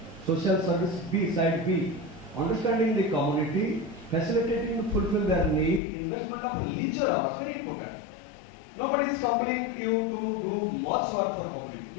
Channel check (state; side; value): drops out; right; at 5.8 s